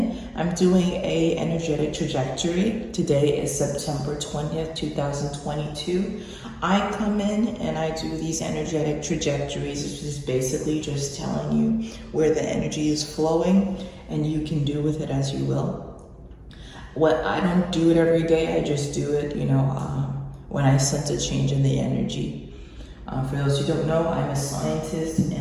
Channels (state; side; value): identical; both; correlation 1.00